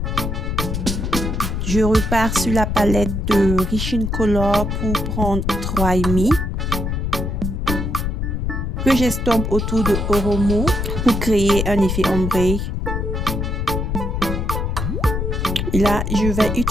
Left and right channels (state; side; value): noise; left; rumble, 1 dB below the sound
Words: Je repars sur la palette de Rich in Color pour prendre 3,5 que j'estompe autour de Oromo pour créer un effet ombré. Et là, je vais